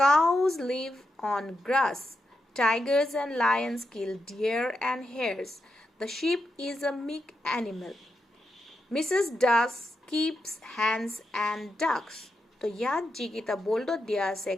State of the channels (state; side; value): normal; both; correlation 0.86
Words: Cows live on grass. Tigers and lions kill deer and hares. The sheep is a meek animal. Mrs. Duck keeps hens and ducks. তো ইয়াত যিকেইটা boldত দিয়া আছে